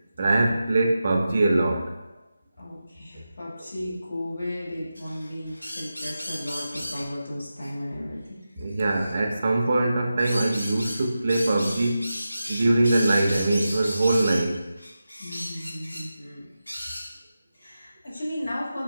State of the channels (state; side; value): inverted; both; correlation -0.92